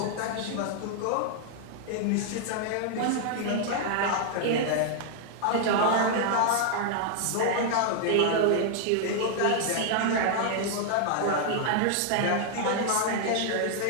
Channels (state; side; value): different; both; correlation 0.00